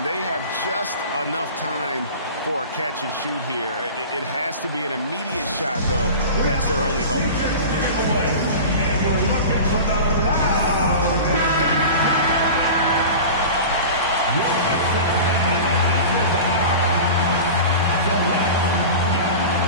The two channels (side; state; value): both; inverted; correlation -0.34